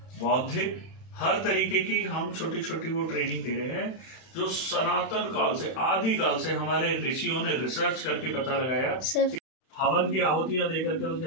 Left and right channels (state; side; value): late; right; 31 ms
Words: बौद्धिक हर तरीके की हम छोटी छोटी वो ट्रेनिंग दे रहे हैं, जो सनातन काल से, आदि काल से हमारे ऋषियों ने रिसर्च करके पता लगाया। हवन की आहुतियां देकर के उस